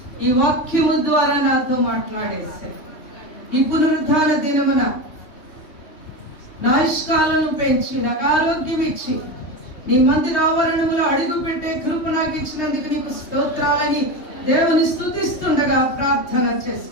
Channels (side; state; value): right; late; 3.3 ms